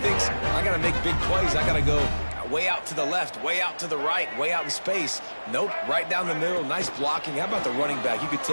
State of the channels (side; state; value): both; inverted; correlation -1.00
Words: thinks, I got to make big plays. I got to go way out to the left, way out to the right, way out in space. Nope, right down the middle. Nice blocking. How about the running back? You could